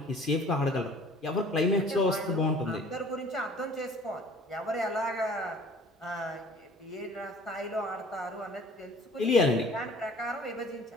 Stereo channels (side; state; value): both; normal; correlation 0.50